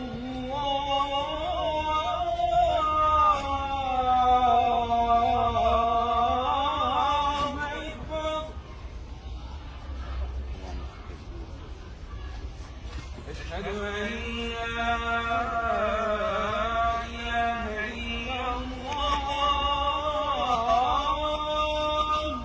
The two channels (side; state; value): both; identical; correlation 1.00